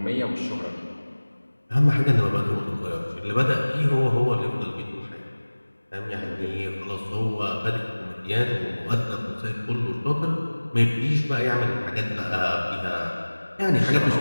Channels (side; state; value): both; inverted; correlation -1.00